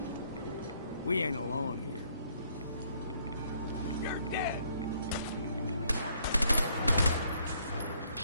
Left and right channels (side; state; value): both; inverted; correlation -0.67